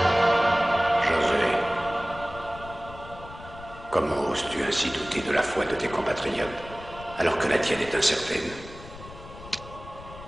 Comment oses-tu ainsi douter de la foi de tes compatriotes, alors que la tienne est incertaine?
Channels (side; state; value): left; noise; rumble, 16 dB below the sound